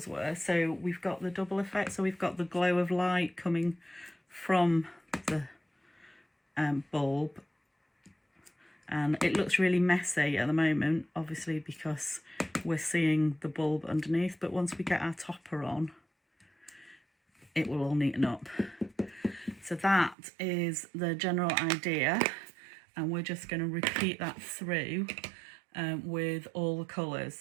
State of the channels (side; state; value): left; drops out; at 20.2 s